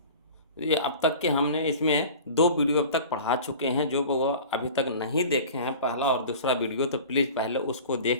ये अब तक के हमने इसमें 2 वीडियो अब तक पढ़ा चुके हैं। जो वो अभी तक नहीं देखे हैं पहला और दूसरा वीडियो, तो प्लीज़ पहले उसको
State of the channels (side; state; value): both; inverted; correlation -0.39